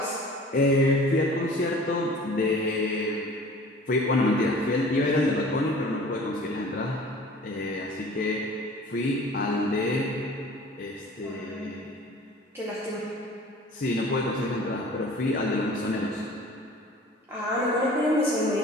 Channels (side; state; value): both; normal; correlation 0.45